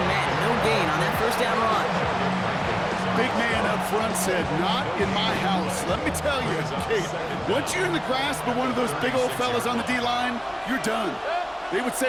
met. No gain on that first down run. Big man up front said, "Not in my house." Let me tell you, Kate, once you're in the grasp of one of those big old fellas on the D-line, you're done. They would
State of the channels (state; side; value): identical; both; correlation 1.00